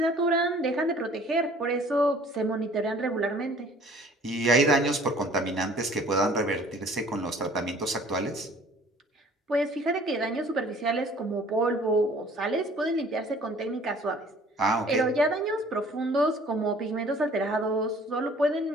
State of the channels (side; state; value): both; normal; correlation 0.52